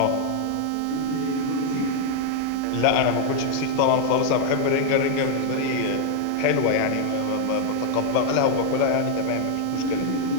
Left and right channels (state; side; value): different; both; correlation 0.00